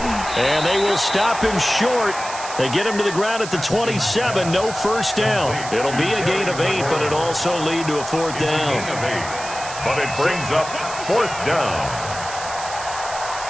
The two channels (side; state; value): right; noise; hiss, 11 dB below the sound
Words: And they will stop him short. They get him to the ground at the 27. No first down. It'll be a gain of 8, but it'll also lead to a 4th down. But it brings up 4th down.